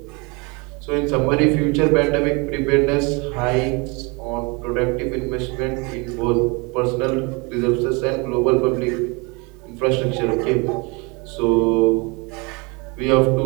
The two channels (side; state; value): left; quieter; 29.0 dB